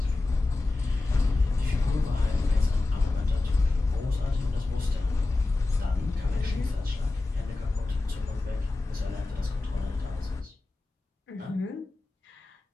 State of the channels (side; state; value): right; quieter; 3.2 dB